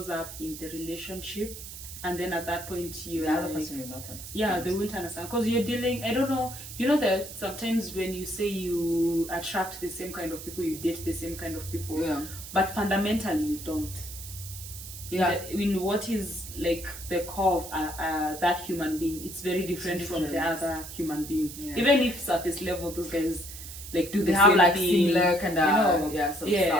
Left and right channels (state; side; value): noise; right; hiss, 12 dB below the sound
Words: up in the relationship, and then at that point you the other person will not understand. Yeah, they won't understand because you're dealing. I don't know. You know that sometimes when you say you attract the same kind of people, you date the same kind of people, but fundamentally you don't. In what is like the core of that human being, it's very different from the other human being. Even if surface level those guys like do the same like thing, similar kind of